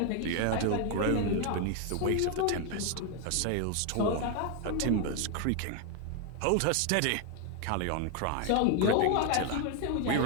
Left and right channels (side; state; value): both; different; correlation 0.01